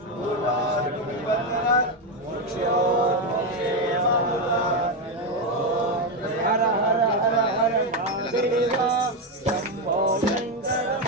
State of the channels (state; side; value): normal; both; correlation 0.08